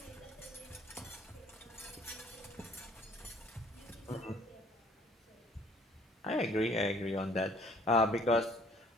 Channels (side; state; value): both; normal; correlation 0.57